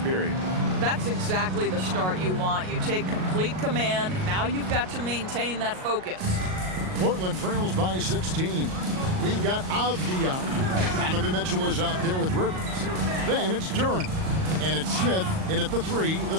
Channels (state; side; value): late; left; 38 ms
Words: period. That's exactly the start you want. You take complete command. Now you've got to maintain that focus. Portland trails by 16. We've got Avdia. Donovan Mitchell is out there with Rivers. Then it's Duren. And it's Smith in at the 3, the